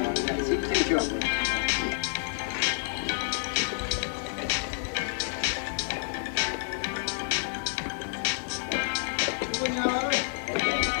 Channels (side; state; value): right; silent; 59 dB below the other